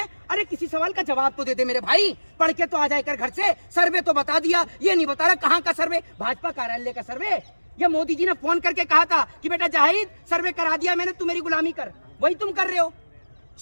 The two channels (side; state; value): both; inverted; correlation -1.00